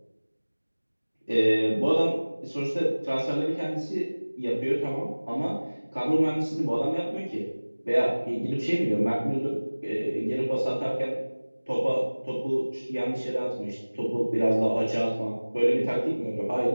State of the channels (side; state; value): both; inverted; correlation -1.00